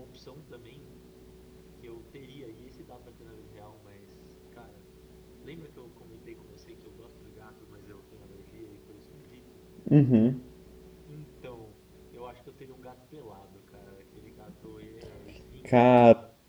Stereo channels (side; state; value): both; identical; correlation 1.00